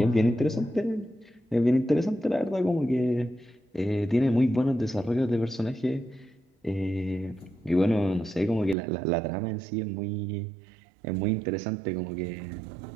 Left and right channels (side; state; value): left; drops out; at 8.8 s